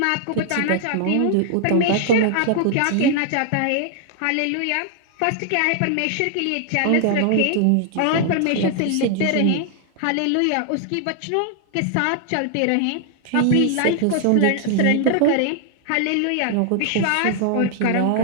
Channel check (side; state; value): both; different; correlation 0.00